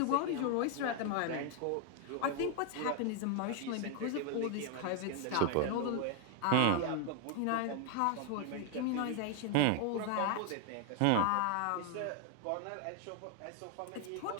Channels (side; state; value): both; different; correlation 0.00